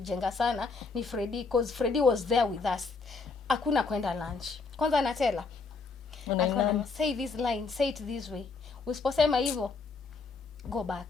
sana ni Freddy, because Freddy was there with us. Hakuna kwenda lunch. Kwanza anatela. Alikuwa anasema say this line, say it this way. Usiposema hivyo, go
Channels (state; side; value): quieter; right; 4.3 dB